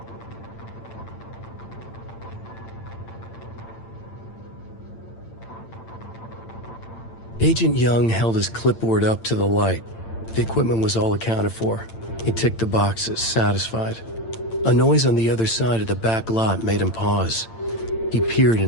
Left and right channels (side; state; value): right; late; 8.9 ms